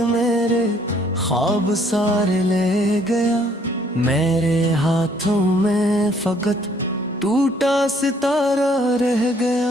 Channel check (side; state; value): both; normal; correlation 0.63